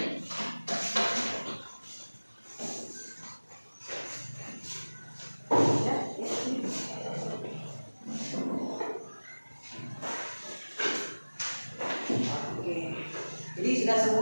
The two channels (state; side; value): inverted; both; correlation -1.00